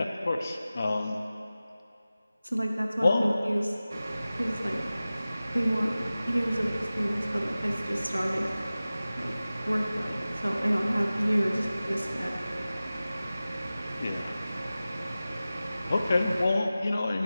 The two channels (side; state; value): both; inverted; correlation -0.96